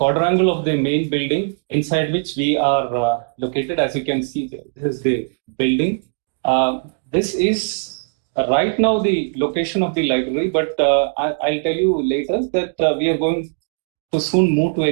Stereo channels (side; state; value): left; silent; digital silence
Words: of the main building inside which we are located. As you can see, this is the building. This is right now the location of the library, but I'll tell you later that we are going to soon move to a